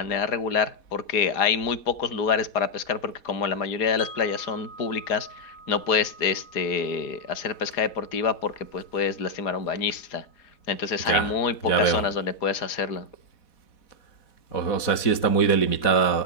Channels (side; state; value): right; late; 4.1 ms